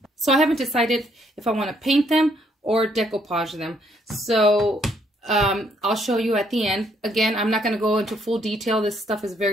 So I haven't decided if I want to paint them or decoupage them. So I'll show you at the end. Again, I'm not going to go into full detail. This stuff is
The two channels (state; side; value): normal; both; correlation 0.69